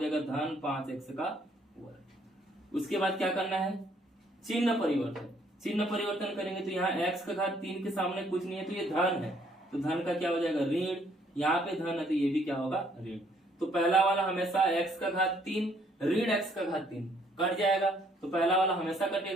धन 5x का वर्ग। उसके बाद क्या करना है, चिन्ह परिवर्तन। चिन्ह परिवर्तन करेंगे तो यहाँ x का घात 3 के सामने कुछ नहीं है तो ये धन है, तो धन का क्या हो जाएगा, ऋण। यहाँ पे धन है तो ये भी क्या होगा, ऋण। तो पहला वाला हमेशा x का घात 3 ऋण x का घात 3 कट जाएगा, तो पहला वाला हमेशा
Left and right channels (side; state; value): both; normal; correlation 0.66